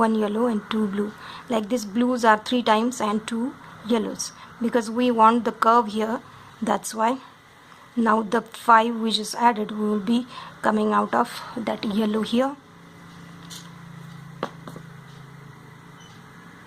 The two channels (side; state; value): both; identical; correlation 1.00